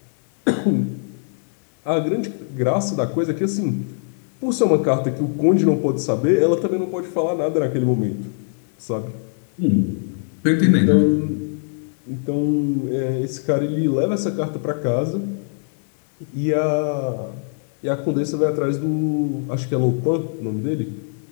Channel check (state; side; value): silent; right; digital silence